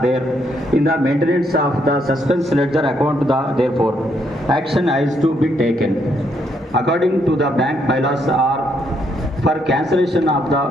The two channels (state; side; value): normal; both; correlation 0.74